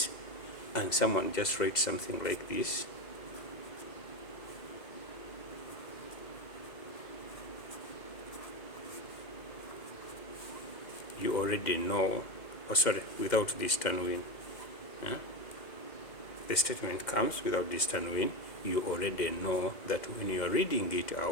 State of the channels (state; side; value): late; right; 2.1 ms